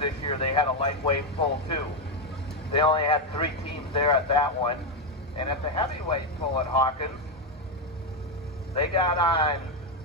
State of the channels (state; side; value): normal; both; correlation 0.06